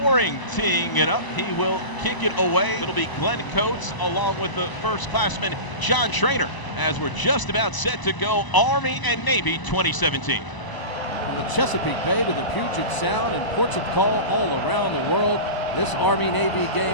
teeing it up. He will kick it away. It'll be Glenn Coates along with the first classman John Trainer as we're just about set to go Army and Navy 2017. From the Chesapeake Bay to the Puget Sound and ports of call all around the world, this Army-Navy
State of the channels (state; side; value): late; right; 1.0 ms